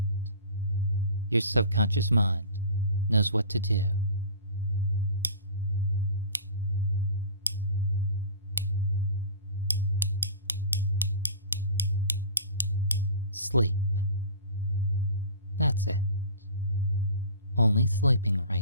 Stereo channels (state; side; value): inverted; both; correlation -0.39